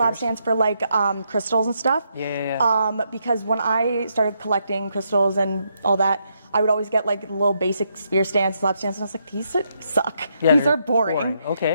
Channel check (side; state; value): both; inverted; correlation -0.78